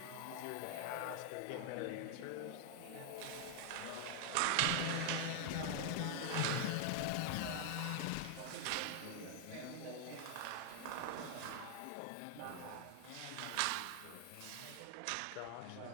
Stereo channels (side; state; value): both; different; correlation 0.00